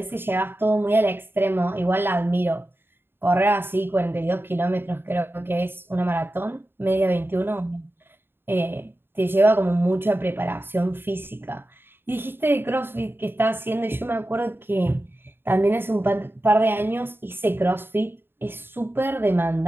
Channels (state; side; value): late; left; 0.10 ms